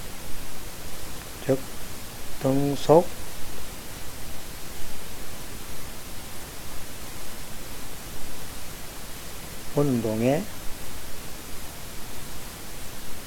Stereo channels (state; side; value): identical; both; correlation 1.00